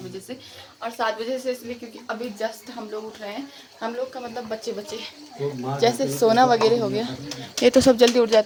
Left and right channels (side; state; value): both; identical; correlation 1.00